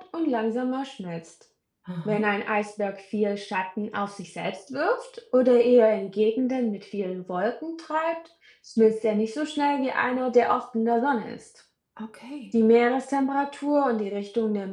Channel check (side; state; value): both; identical; correlation 1.00